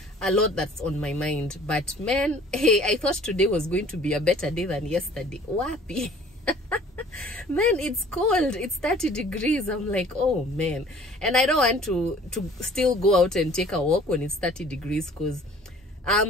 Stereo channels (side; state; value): both; normal; correlation 0.51